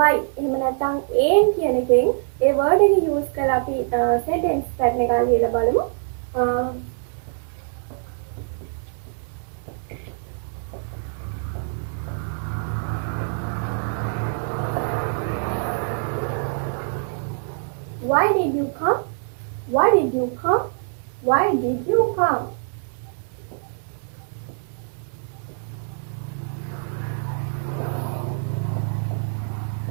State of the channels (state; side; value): silent; left; digital silence